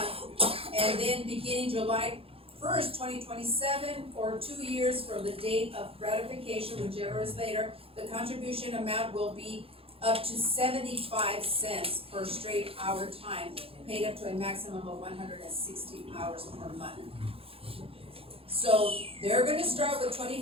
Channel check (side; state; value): left; late; 0.27 ms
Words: And then beginning July 1st, 2027, or 2 years from the date of ratification, whichever is later, the contribution amount will be up to 75 cents per straight hour time, paid up to a maximum of 160 hours per month. So they're gonna start with